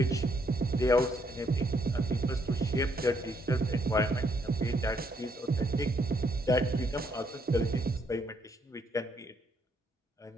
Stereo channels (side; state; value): both; normal; correlation 0.71